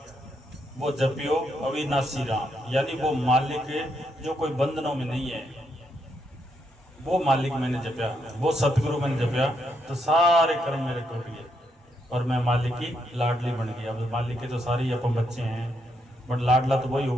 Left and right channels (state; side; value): normal; both; correlation 0.78